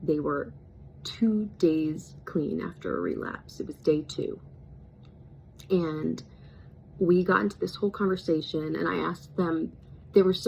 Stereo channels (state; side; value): identical; both; correlation 1.00